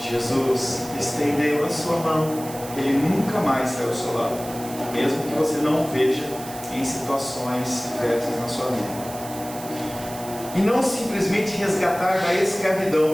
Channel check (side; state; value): right; noise; hiss, 14 dB below the sound